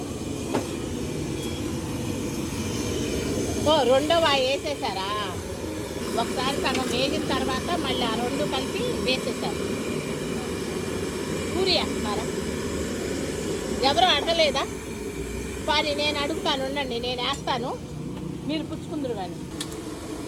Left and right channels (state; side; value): identical; both; correlation 1.00